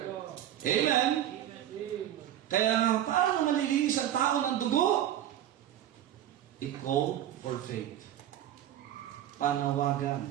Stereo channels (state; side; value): quieter; left; 11.8 dB